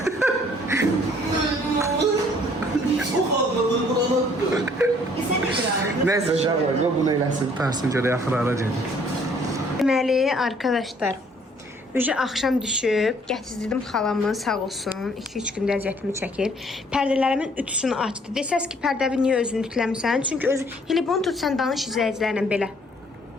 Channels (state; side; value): normal; both; correlation 0.61